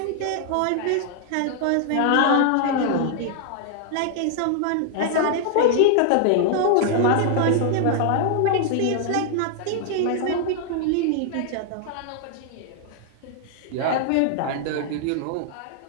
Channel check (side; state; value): both; different; correlation -0.01